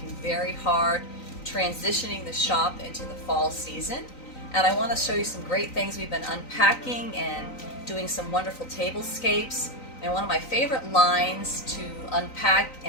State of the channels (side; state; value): right; late; 3.9 ms